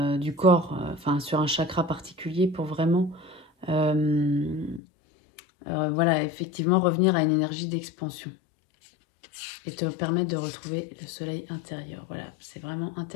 du corps, enfin sur un chakra particulier pour vraiment, voilà, effectivement revenir à une énergie d'expansion et te permettre de retrouver le soleil intérieur. Voilà, c'est vraiment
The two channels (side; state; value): right; drops out; at 4.8 s